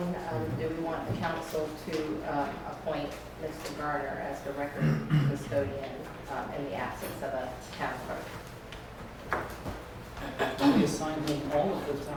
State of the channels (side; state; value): both; identical; correlation 1.00